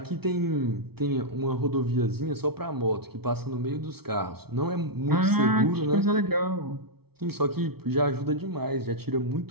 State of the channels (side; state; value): left; late; 0.96 ms